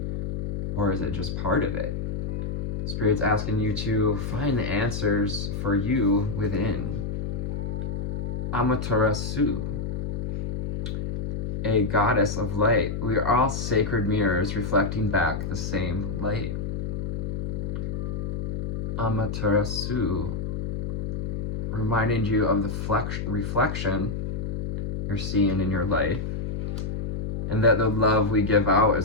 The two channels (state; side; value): noise; left; hum, 3 dB below the sound